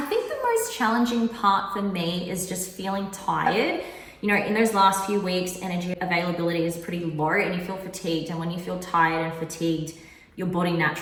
think the most challenging part for me is just feeling tired. You know, in those last few weeks, energy availability is pretty low and you feel fatigued. And when you feel tired and fatigued, your body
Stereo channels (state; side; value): identical; both; correlation 1.00